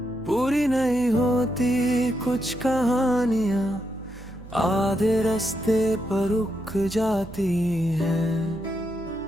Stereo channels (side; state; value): right; noise; hum, 16 dB below the sound